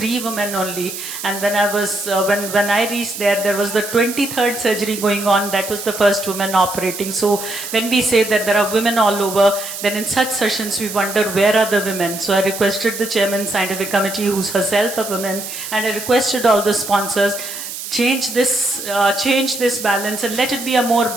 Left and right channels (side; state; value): right; noise; hiss, 8 dB below the sound